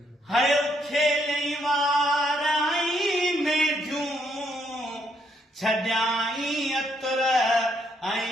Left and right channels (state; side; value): normal; both; correlation 0.73